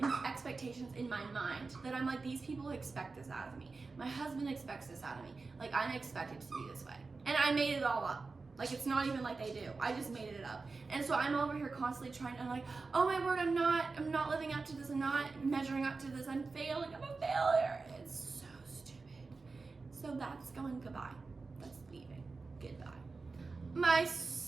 expectations in my mind that I'm like, these people expect this out of me. My husband expects this out of me. Like, I'm expected to be this way. And I made it all up. Like, it's not even like they do. I just made it up. And so I'm over here constantly trying to, like, oh my word, I'm not living up to this. I'm not measuring up to this. I'm failing. I'm a failure. It's so stupid. So that's going goodbye. That's leaving. Goodbye. My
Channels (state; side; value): quieter; left; 4.1 dB